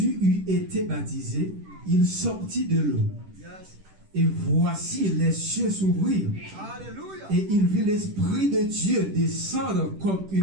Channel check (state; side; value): late; left; 10 ms